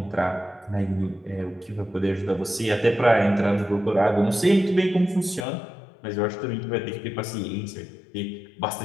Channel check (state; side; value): drops out; right; at 5.5 s